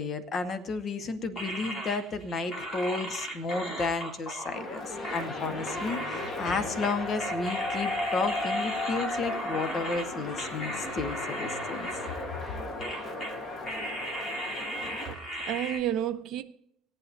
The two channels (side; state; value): both; normal; correlation 0.56